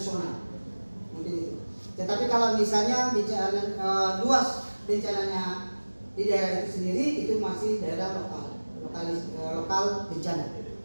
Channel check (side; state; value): both; inverted; correlation -1.00